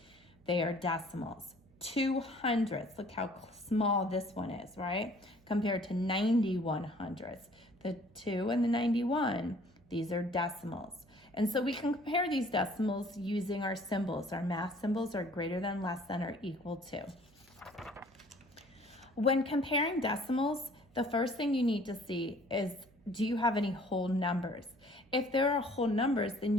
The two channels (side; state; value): right; noise; hum, 30 dB below the sound